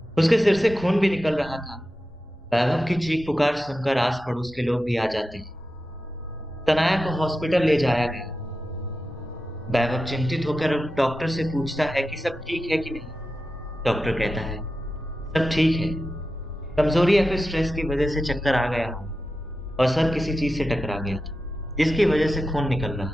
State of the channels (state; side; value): normal; both; correlation 0.91